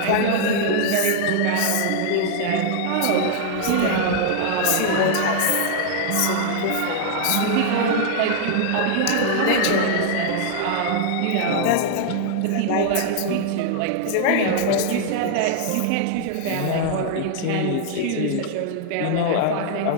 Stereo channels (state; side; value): different; both; correlation -0.01